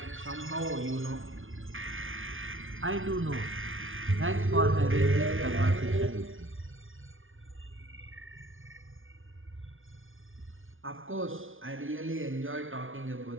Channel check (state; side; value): late; left; 0.58 ms